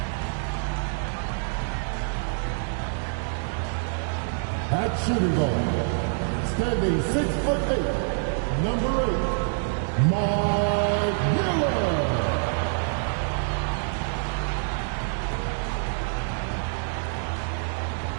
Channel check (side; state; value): left; silent; digital silence